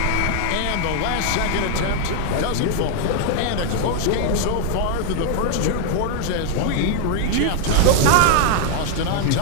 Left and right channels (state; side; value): different; both; correlation 0.00